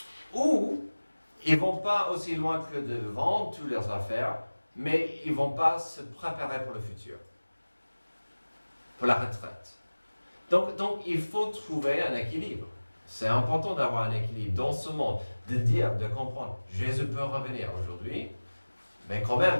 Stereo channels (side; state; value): both; inverted; correlation -1.00